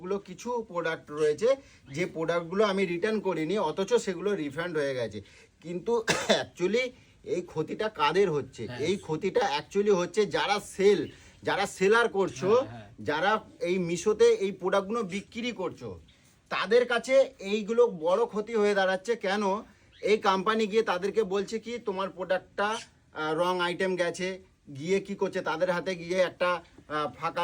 কিছু প্রোডাক্ট রয়েছে যে প্রোডাক্টগুলো আমি রিটার্ন করিনি, অথচ সেগুলো রিফান্ড হয়ে গেছে। কিন্তু অ্যাকচুয়ালি এই ক্ষতিটা কাদের হচ্ছে? এই ক্ষতিটা অ্যাকচুয়ালি হচ্ছে যারা সেলার করছো, যারা এই মিশোতে এই প্রোডাক্টগুলো বিক্রি করছো, তাদের কাছে এইগুলো বড় ক্ষতি হয়ে দাঁড়াচ্ছে। কেন? এই কোম্পানি গিয়ে তাদেরকে বলছে কি তোমার প্রোডাক্টটা রং আইটেম গেছে, গিয়ে কি করছে তাদের হাতে গিয়ে একটা ফাঁকা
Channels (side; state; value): both; identical; correlation 1.00